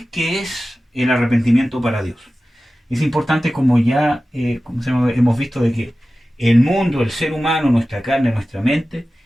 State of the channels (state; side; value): normal; both; correlation 0.95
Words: qué es el arrepentimiento para Dios? Es importante, como ya hemos visto, de que el mundo, el ser humano, nuestra carne, nuestra mente,